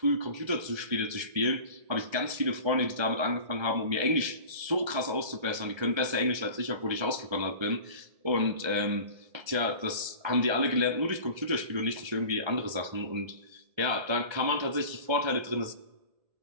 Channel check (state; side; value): late; left; 1.3 ms